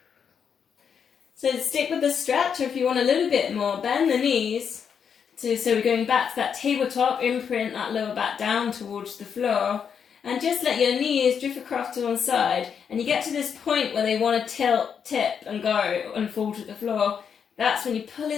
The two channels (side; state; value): right; quieter; 7.2 dB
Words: So stick with the stretch, or if you want a little bit more, bend the knees. So we're going back to that tabletop, imprint that lower back down towards the floor, and just let your knees drift across to one side. And you get to this point where they want to tilt, tip, and go and fall to the floor. That's when you pull